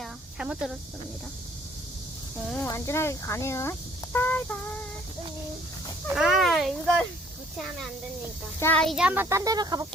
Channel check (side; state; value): both; normal; correlation 0.59